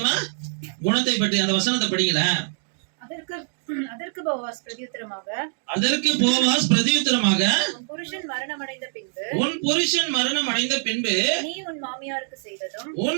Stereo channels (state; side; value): silent; left; digital silence